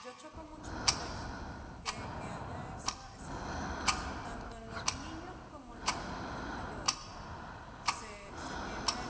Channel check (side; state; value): both; identical; correlation 1.00